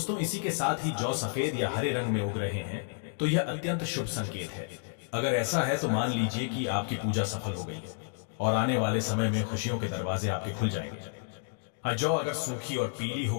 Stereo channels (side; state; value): right; silent; digital silence